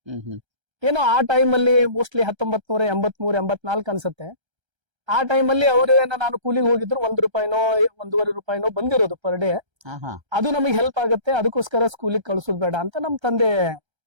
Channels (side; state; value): left; late; 1.3 ms